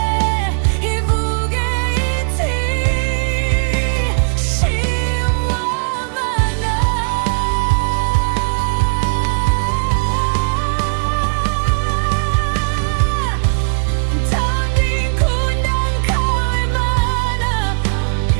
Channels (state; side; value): silent; left; digital silence